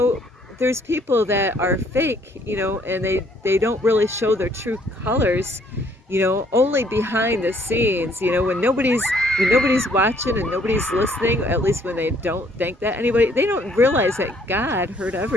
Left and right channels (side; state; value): both; normal; correlation 0.64